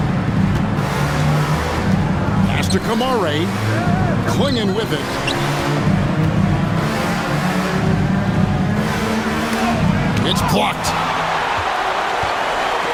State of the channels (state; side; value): identical; both; correlation 1.00